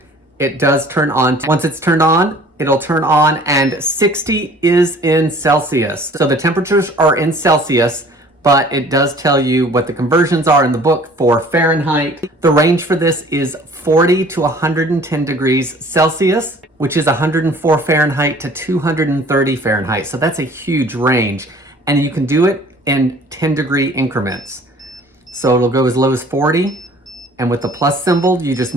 it does turn on. Once it's turned on, it'll turn on, and 60 is in Celsius. So the temperatures are in Celsius, but it does tell you what the conversions are in the book for Fahrenheit. The range for this is 40 to 110 degrees Celsius, which is 104 Fahrenheit to 230 Fahrenheit. So that's a huge range, and you can do it in 10-degree increments. So it'll go as low as 40, and with the plus symbol, you just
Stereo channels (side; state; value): both; normal; correlation 0.51